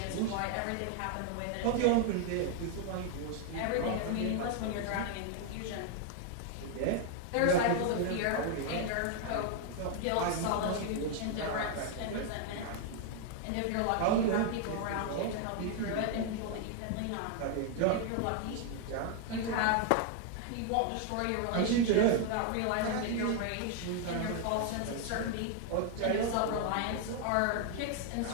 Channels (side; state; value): both; different; correlation 0.00